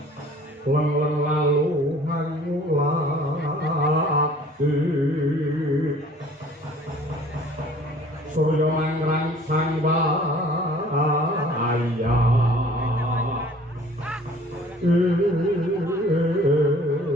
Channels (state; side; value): normal; both; correlation 0.52